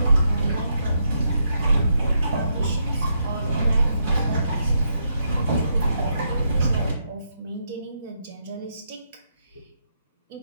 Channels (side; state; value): both; inverted; correlation -0.79